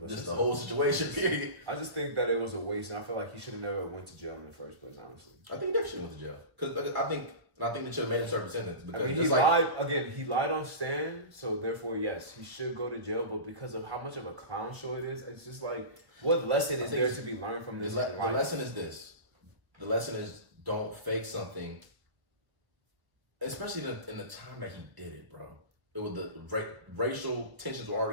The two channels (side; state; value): left; late; 1.2 ms